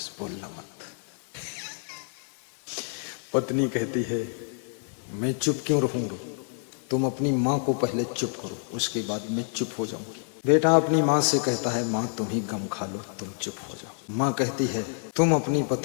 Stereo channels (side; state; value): right; silent; 59 dB below the other